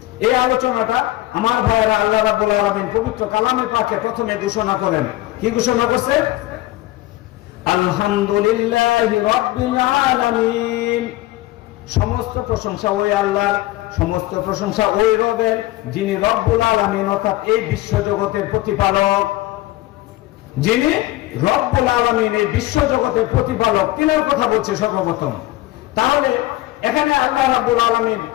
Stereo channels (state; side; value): quieter; right; 17.6 dB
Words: এই আলোচনাটা আমার ভাইয়েরা, আল্লাহ রাব্বুল আলামিন পবিত্র কালামে পাকে প্রথমে ঘোষণা করেন। কি ঘোষণা করছে? আলহামদুলিল্লাহি রাব্বিল আলামিন। সমস্ত প্রশংসা ওই আল্লাহর, সমস্ত প্রশংসা ওই রবের, যিনি রব্বুল আলামিন, অর্থাৎ এই বিশ্ব জগতের প্রতিপালক। যিনি রব্বুল আলামিন, এই বিশ্ব জগতের প্রতিপালক, তিনার কথা বলছে সর্বপ্রথম। তাহলে এখানে আল্লাহ রাব্বুল আলামিন